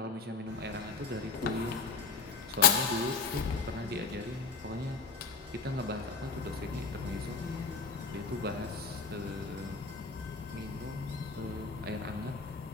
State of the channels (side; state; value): right; quieter; 4.7 dB